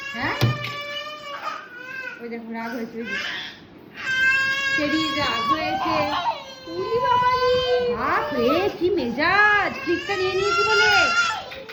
হ্যাঁ ওই দেখো রাগ হয়েছে, ওই যে চেরি রাগ হয়েছে। উলি বাবালি, বাপ রে কি মেজাজ, ক্লিকটা নিয়ে নিয়েছি বলে।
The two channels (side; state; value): both; identical; correlation 1.00